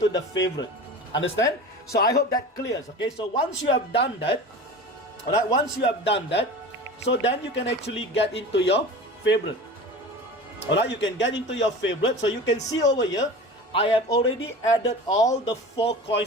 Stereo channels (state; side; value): normal; both; correlation 0.35